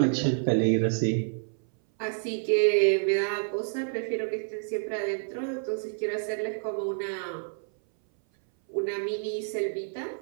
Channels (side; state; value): left; silent; 58 dB below the other